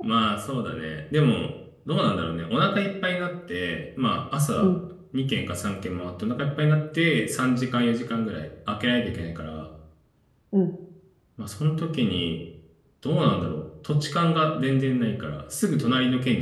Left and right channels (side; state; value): both; identical; correlation 1.00